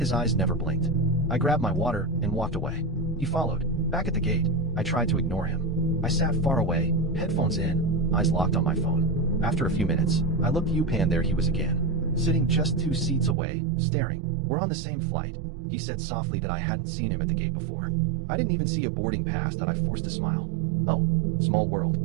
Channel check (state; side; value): drops out; left; at 13.4 s